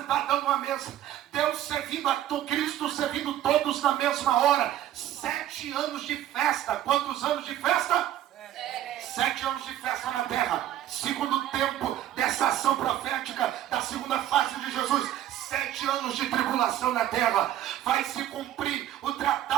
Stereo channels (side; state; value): left; quieter; 12.3 dB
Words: numa mesa. Deus servindo a Cristo, servindo todos na mesma hora. 7 anos de festa. Quantos anos de festa? 7 anos de festa na terra. Segundo tempo dessa ação profética da segunda fase de Jesus. 7 anos de tribulação na terra. Vai se cumprir o